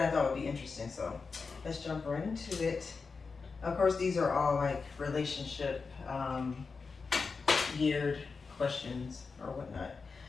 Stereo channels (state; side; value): quieter; right; 4.7 dB